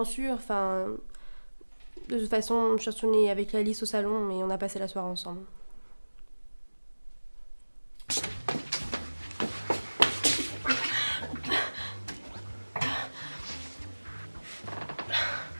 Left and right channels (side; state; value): both; inverted; correlation -1.00